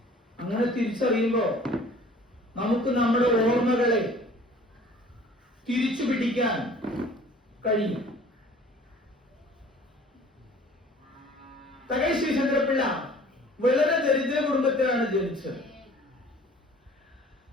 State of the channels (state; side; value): normal; both; correlation 0.50